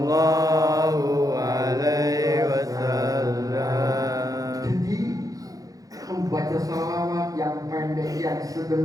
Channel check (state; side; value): late; left; 0.17 ms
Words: alaihi wasallam. Jadi membaca salawat yang pendek, yang sedang,